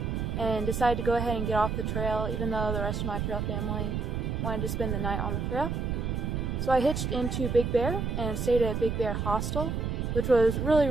and decided to go ahead and get off the trail even though the rest of my trail family wanted to spend the night on the trail. So I hitched into Big Bear and stayed at Big Bear Hostel, which was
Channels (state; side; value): noise; right; rumble, 1 dB below the sound